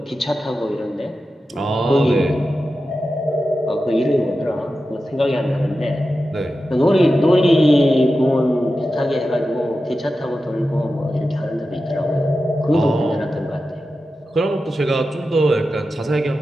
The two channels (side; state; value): both; normal; correlation 0.92